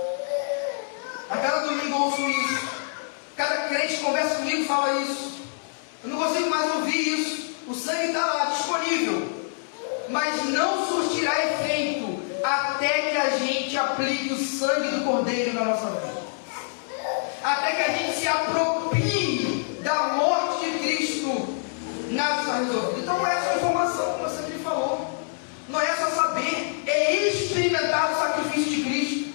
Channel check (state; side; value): silent; right; digital silence